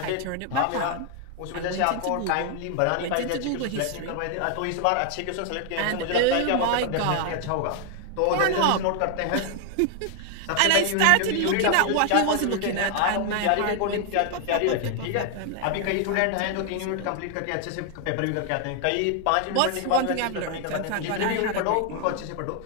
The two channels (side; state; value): both; different; correlation 0.00